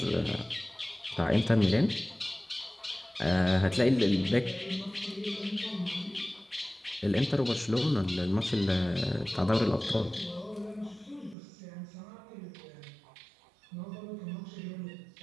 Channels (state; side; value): drops out; left; at 11.4 s